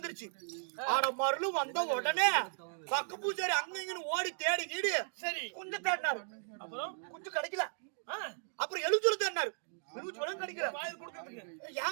ஆனா மருள் வந்த உடனே பக்க பூஜாரி அங்க இங்கன்னு ஓடி தேடி கீடு சரி கொஞ்சம் தேடினாரு. அப்புறம் கொஞ்சம் கிடைக்கல. அப்புறம் எழுச்சூர் தேடினாரு.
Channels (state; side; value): silent; left; digital silence